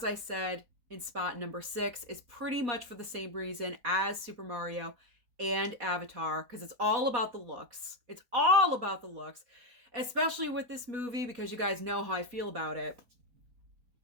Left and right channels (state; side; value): late; left; 4.1 ms